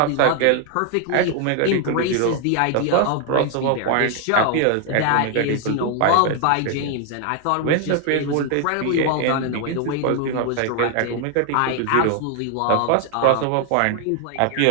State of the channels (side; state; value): both; different; correlation 0.00